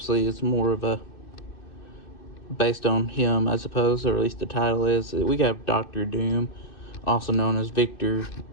it's more of a based on him, I suppose, or at least the title is. We got Doctor Doom, also known as Victor,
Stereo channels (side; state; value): right; late; 2.6 ms